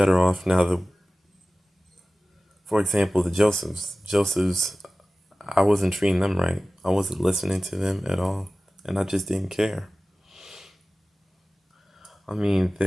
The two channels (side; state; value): both; normal; correlation 0.97